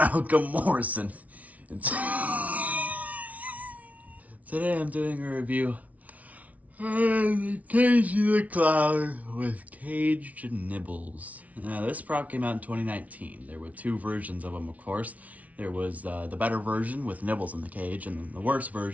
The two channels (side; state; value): left; late; 0.070 ms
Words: Morrison. And today I'm doing a review of the Cagey the Clown with caged nibbles. Now, this prop came out in 2019. There were two versions of them, of course. There was the better version with Nibbles in the cage, and then the worse